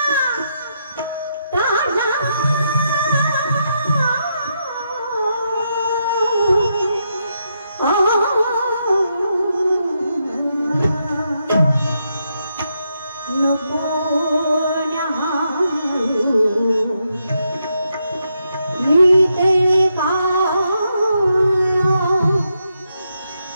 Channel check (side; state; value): both; inverted; correlation -0.81